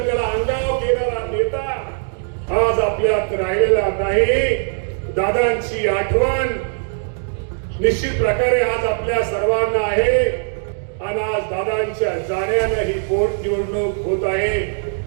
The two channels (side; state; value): left; silent; digital silence